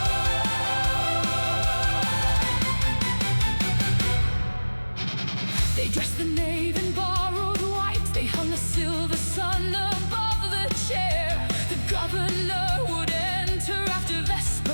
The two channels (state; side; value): inverted; both; correlation -1.00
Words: They dressed the nave in borrowed white. They hung a silver sun above the chair. The governor would enter after